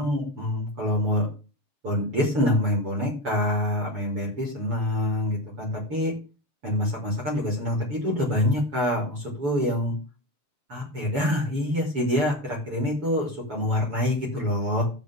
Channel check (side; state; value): left; late; 7.0 ms